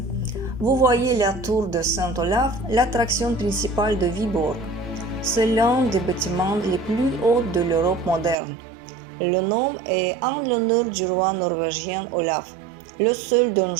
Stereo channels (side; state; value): left; drops out; at 8.3 s